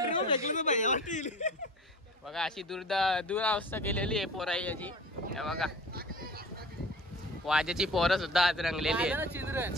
बघा, अशी दुरावस्था केलेली आहे पोराई याची बघा। वाजेची पोरं सुद्धा आज रंगलेली आहेत,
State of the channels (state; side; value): normal; both; correlation 0.40